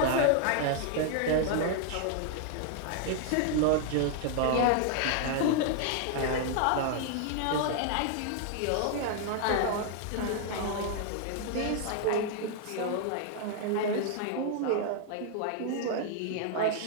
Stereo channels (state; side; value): different; both; correlation 0.00